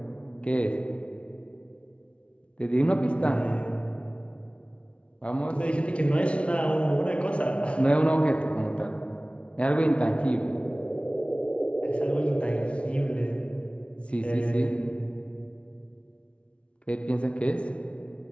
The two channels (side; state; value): right; late; 0.060 ms